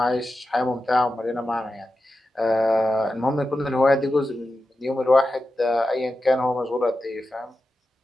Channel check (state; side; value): normal; both; correlation 0.91